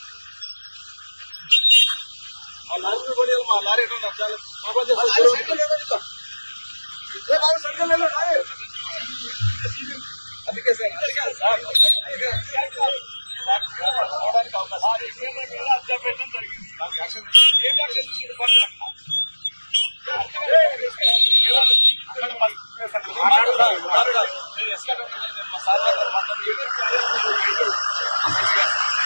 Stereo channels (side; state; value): both; inverted; correlation -1.00